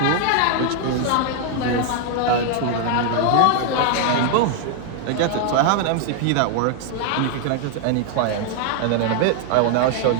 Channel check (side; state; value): both; different; correlation 0.00